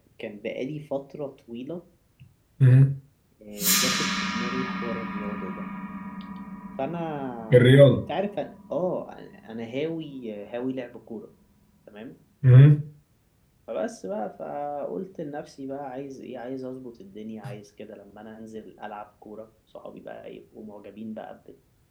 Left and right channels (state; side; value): identical; both; correlation 1.00